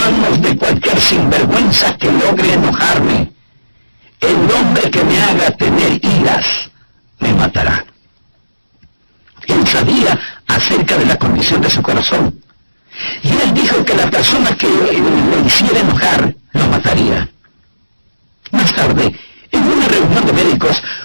de cualquier sinvergüenza que logre enojarme. El hombre que me haga tener iras me matará. Él sabía acerca de la condición de su corazón. Y él dijo que la persona que lo hiciera enojar lo mataría. Más tarde, en una reunión de médicos,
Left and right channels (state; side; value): inverted; both; correlation -1.00